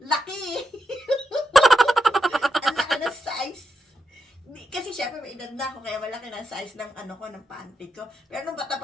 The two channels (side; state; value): both; normal; correlation 0.84